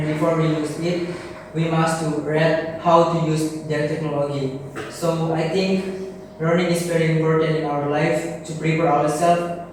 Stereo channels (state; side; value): identical; both; correlation 1.00